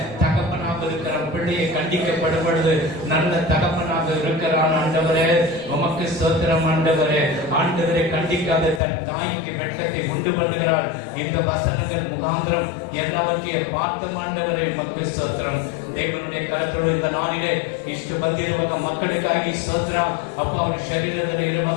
தகப்பனாக இருக்கிற பிள்ளையை கண்டிக்கப்படும் பொழுது நல்ல தகப்பனாக இருக்கிறான். ஆண்டவரே உமக்கு ஸ்தோத்திரம். ஆண்டவரே ஆண்டவரை கண்டிக்காத தன் தாய்க்கு வெட்கத்தை உண்டு பண்ணுகிறார். இந்த வசனங்கள் முகாந்திரம் எல்லாவற்றையும் பார்த்த ஆண்டவரை உமக்கு ஸ்தோத்திரம். தேவனுடைய கரத்தோடு இந்த நாளிலே ಇಷ್ಟು ಬಂದಿರುವ ಮಕ್ಕಳಿಗಾಗಿ ಸ್ತೋತ್ರ ಅಪ್ಪ. ಅವರ ಶರೀರದಲ್ಲಿ ಇರುವ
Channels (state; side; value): drops out; right; at 8.8 s